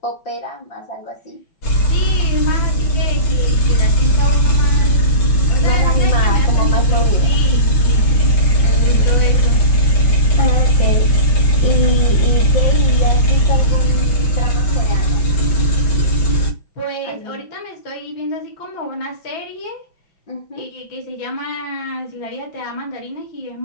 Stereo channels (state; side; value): late; right; 5.9 ms